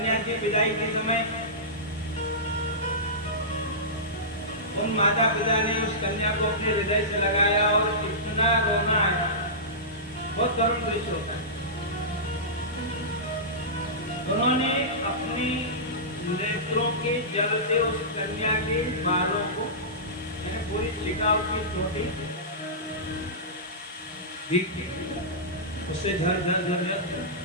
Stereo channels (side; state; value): both; normal; correlation -0.18